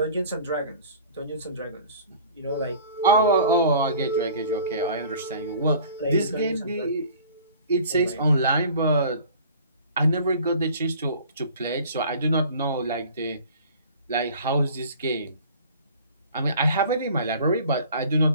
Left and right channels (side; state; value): both; inverted; correlation -0.46